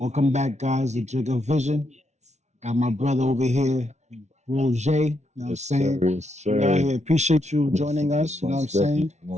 back, guys, to Jigga Vision. Got my brother over here, Roger. You know what I'm Yes, saying? sir. Yes, We out sir. here. Appreciate you joining us. You know what I'm Most definitely. saying?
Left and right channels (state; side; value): late; left; 0.32 ms